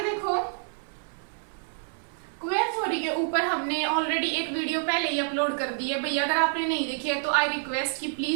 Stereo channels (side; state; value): left; silent; 59 dB below the other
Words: देखो, क्वेयर थ्योरी के ऊपर हमने ऑलरेडी एक वीडियो पहले ही अपलोड कर दी है भैया, अगर आपने नहीं देखी है तो आई रिक्वेस्ट कि